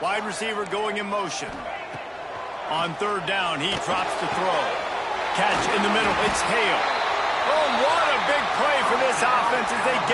Wide receiver going in motion. On third down, he drops to throw. Catch in the middle, it's Hale. Oh, what a big play for this offense as they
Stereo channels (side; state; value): both; identical; correlation 1.00